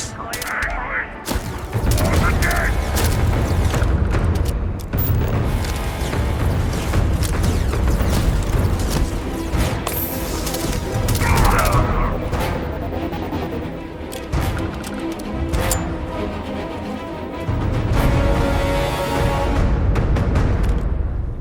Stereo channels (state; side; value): identical; both; correlation 1.00